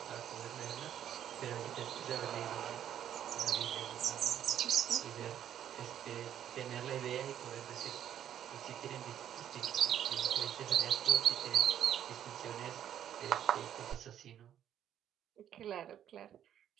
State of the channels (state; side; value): quieter; left; 10.2 dB